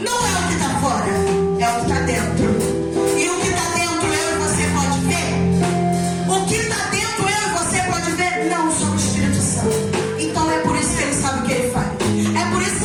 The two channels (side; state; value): both; identical; correlation 1.00